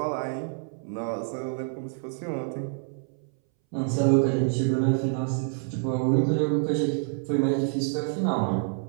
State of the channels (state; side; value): silent; left; 60 dB below the other